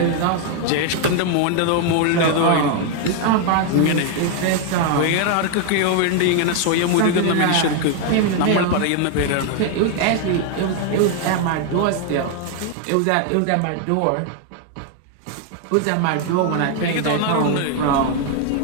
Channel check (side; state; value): both; different; correlation 0.00